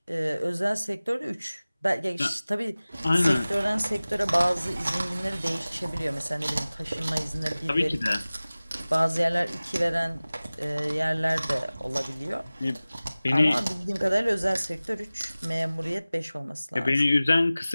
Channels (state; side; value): inverted; both; correlation -0.98